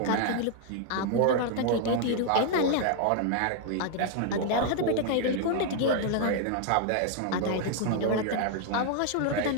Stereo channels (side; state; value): both; different; correlation 0.00